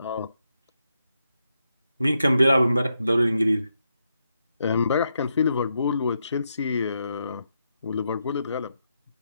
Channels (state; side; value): inverted; both; correlation -0.83